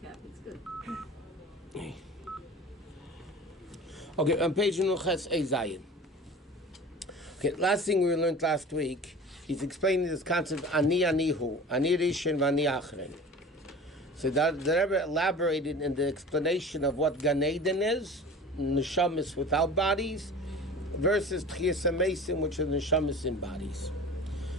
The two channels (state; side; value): normal; both; correlation 0.39